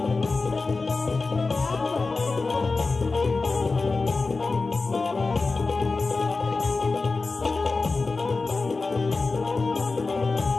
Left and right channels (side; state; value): right; quieter; 3.9 dB